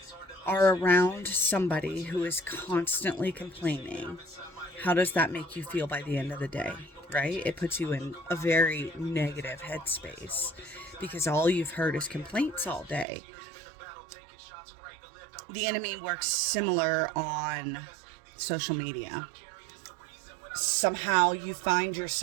are around somebody who is constantly complaining, how does that make you feel by the end of the day? Right? It puts you in a very negative headspace because all you've heard is complaints all day. The enemy works similar on social media. Somehow you find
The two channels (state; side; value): drops out; left; at 13.1 s